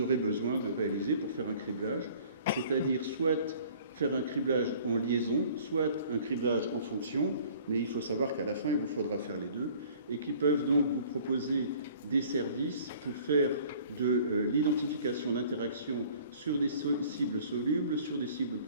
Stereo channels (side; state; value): both; inverted; correlation -0.52